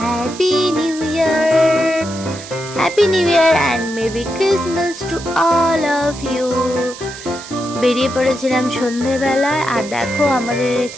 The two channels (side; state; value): right; noise; hiss, 14 dB below the sound